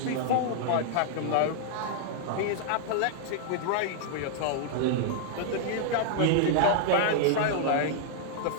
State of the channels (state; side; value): different; both; correlation -0.01